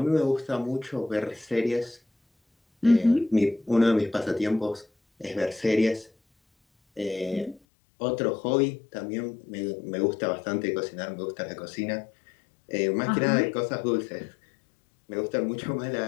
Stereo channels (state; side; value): drops out; right; at 7.6 s